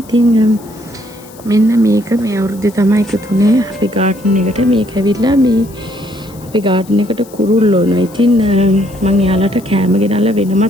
ඉතින් මෙන්න මේක මේ අවුරුද්දේ තමයි එකතුනේ අපේ ගාඩන් එකට. මේක ඇවිල්ලා මේ අපේ ගාඩන් එකට කුරුල්ලෝ නෝ. ඉතින් මම එයාලට කෑම ගෙනල්ලා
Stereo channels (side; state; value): left; noise; hiss, 23 dB below the sound